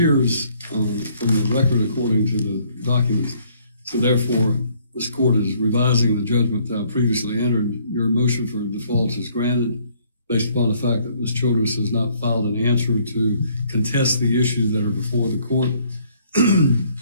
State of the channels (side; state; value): both; inverted; correlation -0.64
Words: from the record according to the documents. So therefore, this court is revising the judgment that I previously entered. Your motion for default is granted based upon the fact that Ms. Childress has not filed an answer to contest the issues that are before the court.